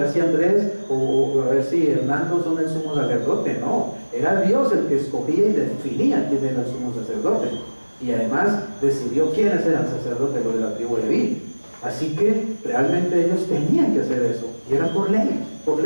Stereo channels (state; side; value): inverted; both; correlation -1.00